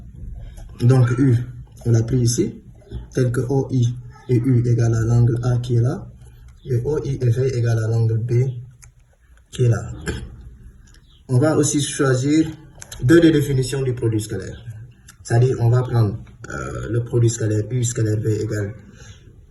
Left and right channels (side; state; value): both; identical; correlation 1.00